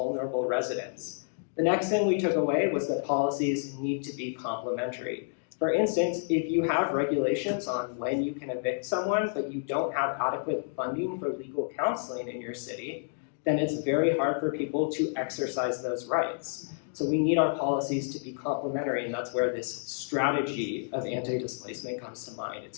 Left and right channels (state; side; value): silent; right; digital silence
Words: residents? The next thing we took away was that policies need to be complementary. For instance, if you have regulations on when you can evict someone, but you don't have adequate funding for legal counseling in your city, then it's very hard for people to exercise those rights. So we need our policies to be complementary, and that's where this strategy of anti-displacement comes to mind.